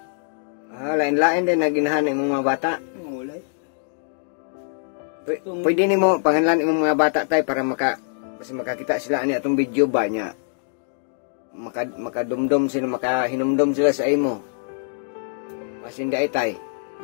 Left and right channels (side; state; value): right; silent; digital silence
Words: Lain-lain din naginahan ng mga bata. Wala. Pwede nimo pangalan imong mga bata tay para basta makakita sila ani atong video ba niya. Makadumdum sila, makahinumdum sila sa imo. Basta hindi ay tay.